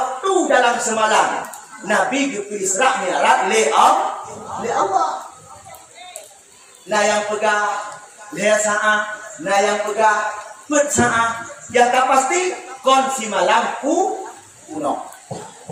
dalam semalam. Nabi ke Isra Mi'raj le Allah. Nah yang pegang le saat, nah yang pegang pet saat. Yang tak pasti kunci malam kuno.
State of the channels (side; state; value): both; identical; correlation 1.00